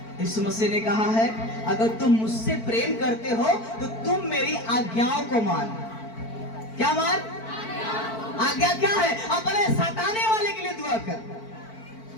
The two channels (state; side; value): late; right; 4.5 ms